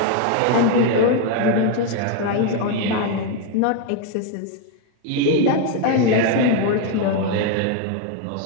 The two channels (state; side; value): different; both; correlation 0.01